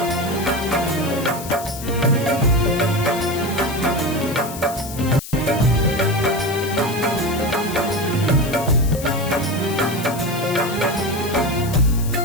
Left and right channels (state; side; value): noise; left; hiss, 12 dB below the sound